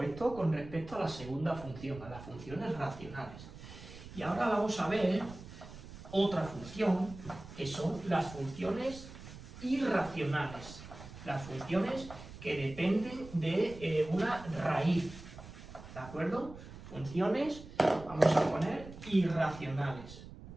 esto con respecto a la segunda función, a las funciones racionales. Y ahora vamos a ver otra función, que son las funciones irracionales. Las funciones que dependen de una raíz. ¿De acuerdo? Funciones, vamos a poner, irracionales.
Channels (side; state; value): right; noise; rumble, 15 dB below the sound